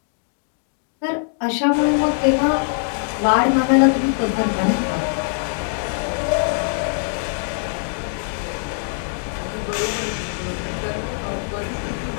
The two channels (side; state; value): right; silent; 64 dB below the other